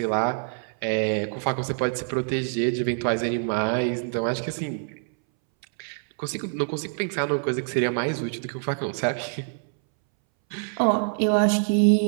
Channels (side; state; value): left; silent; 61 dB below the other